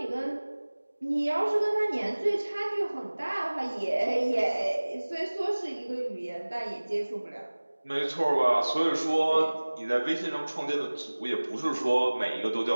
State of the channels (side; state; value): both; inverted; correlation -1.00